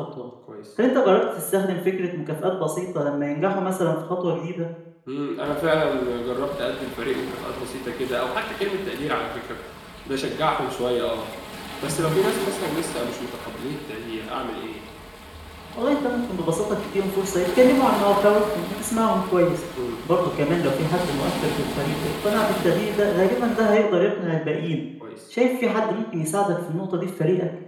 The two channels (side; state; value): both; identical; correlation 1.00